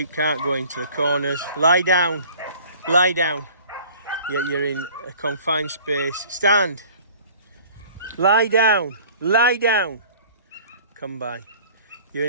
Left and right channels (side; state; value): both; inverted; correlation -0.48